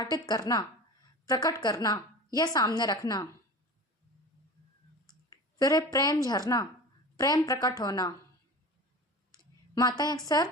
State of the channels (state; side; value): normal; both; correlation 0.34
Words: करना, प्रकट करना या सामने रखना। फिर है प्रेम झरना। प्रेम प्रकट होना। माताएं अक्सर